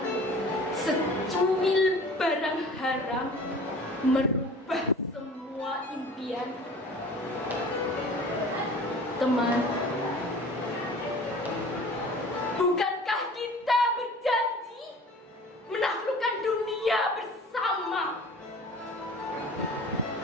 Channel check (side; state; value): both; normal; correlation 0.44